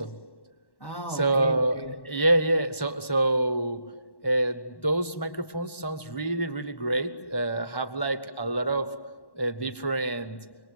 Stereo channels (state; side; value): late; right; 1.1 ms